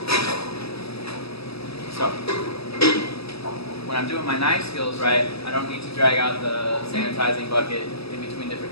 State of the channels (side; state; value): right; late; 0.78 ms